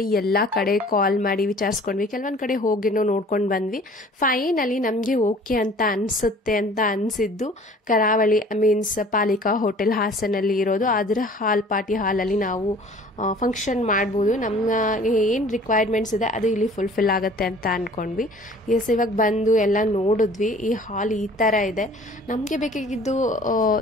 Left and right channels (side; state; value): both; normal; correlation 0.50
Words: ಎಲ್ಲಾ ಕಡೆ ಕಾಲ್ ಮಾಡಿ ವಿಚಾರಿಸ್ಕೊಂಡ್ವಿ, ಕೆಲವೊಂದ್ ಕಡೆ ಹೋಗಿ ನೋಡ್ಕೊಂಡು ಬಂದ್ವಿ. ಫೈನಲಿ ನಮ್ಗೆ ಓಕೆ ಅಂತ ಅನ್ಸುತ್ತೆ ಅಂತ ಅನ್ಸಿದ್ದು ಕರಾವಳಿ ಮೀನ್ಸ್ ಪಾಲಿಕಾ ಹೋಟೆಲ್ ಹಾಸನಲ್ಲಿ ಇರೋದು. ಅದರ ಪಾರ್ಟಿ ಹಾಲಲ್ಲಿ ನಾವು ಫಂಕ್ಷನ್ ಮಾಡ್ಬೋದು. ನಮ್ಗೆ ಏನ್ ರಿಕ್ವೈರ್ಮೆಂಟ್ಸ್ ಇದೆ ಅದು ಇಲ್ಲಿ ಫುಲ್ಫಿಲ್ ಆಗುತ್ತೆ ಅಂತ ಅನ್ಕೊಂಡ್ವಿ. ಎಸ್, ಇವಾಗ ಬಂದು ಎಲ್ಲ ನೋಡಿದ್ವಿ. ಈ ಹಾಲ್ ಈ ತರ ಇದೆ. ನಮ್ಗೆ ಬೇಕಾಗಿದ್ದು